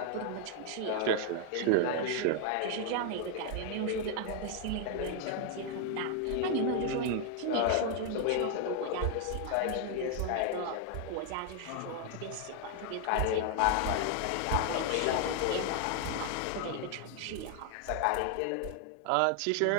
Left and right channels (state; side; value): different; both; correlation 0.00